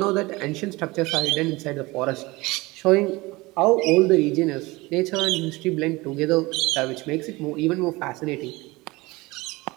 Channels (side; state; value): left; quieter; 22.2 dB